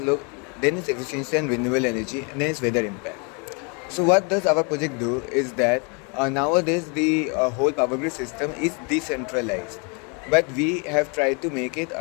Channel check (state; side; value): quieter; right; 34.3 dB